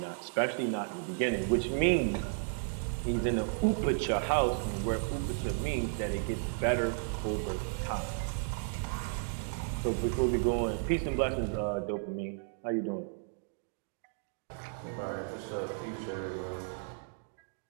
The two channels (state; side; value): silent; left; digital silence